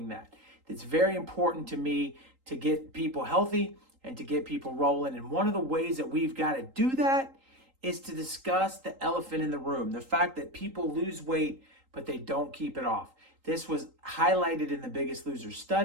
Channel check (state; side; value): late; left; 3.8 ms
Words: that. It's very important to me to get people healthy and to get people rolling, and one of the ways that we've got to do that is to discuss the elephant in the room, the fact that people lose weight but they don't keep it off. This was highlighted in the Biggest Loser